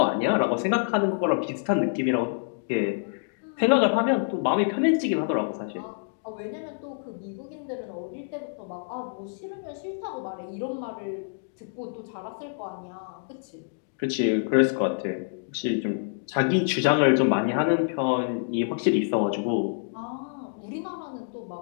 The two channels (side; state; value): right; silent; digital silence